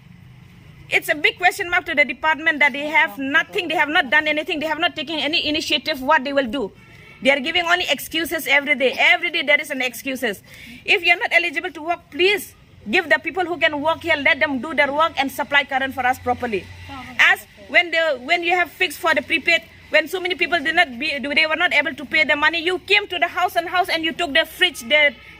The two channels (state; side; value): identical; both; correlation 1.00